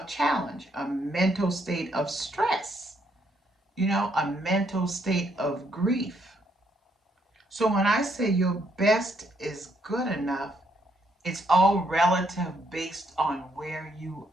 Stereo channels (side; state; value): both; normal; correlation 0.73